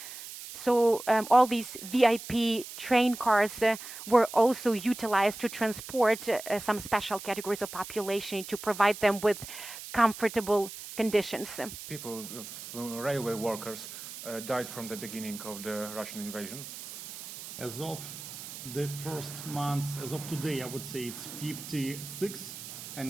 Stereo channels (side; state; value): right; noise; hiss, 11 dB below the sound